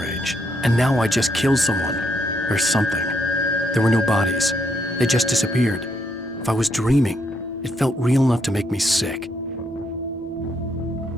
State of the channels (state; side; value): normal; both; correlation 0.76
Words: and now I just killed someone. Or something. There were no bodies. They just disappeared. If I was dreaming, it felt real enough to make me sick.